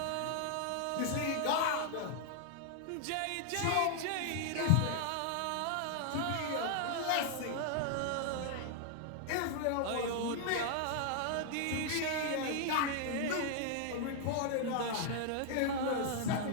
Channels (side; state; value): both; different; correlation 0.00